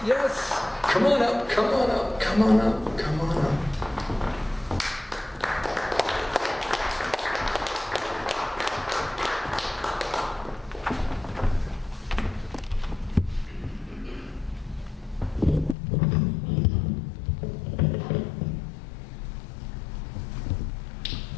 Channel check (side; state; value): right; drops out; at 15.8 s